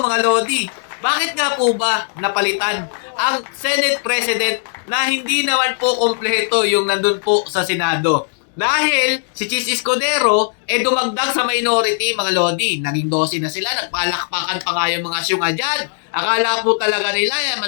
mga Lodi. Bakit nga po ba napalitan ang Senate President na hindi naman po kompleto yung nandun po sa Senado? Dahil si Cheese Escudero dumagdag sa minority, mga Lodi. Naging 12 na sila, nagpalakpakan pa nga yung mga syunga dyan. Akala po talaga nila,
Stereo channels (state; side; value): silent; right; 67 dB below the other